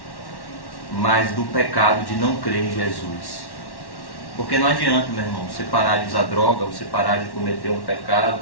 mas do pecado de não crer em Jesus. Porque não adianta, meu irmão, você parar de usar droga, você parar de cometer um pecado.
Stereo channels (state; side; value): late; right; 1.1 ms